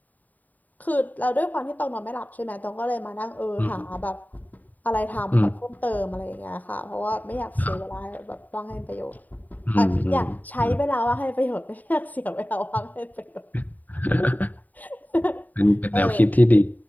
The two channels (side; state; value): right; late; 0.081 ms